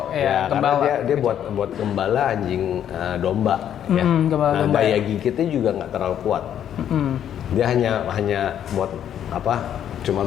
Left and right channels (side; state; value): right; quieter; 9.9 dB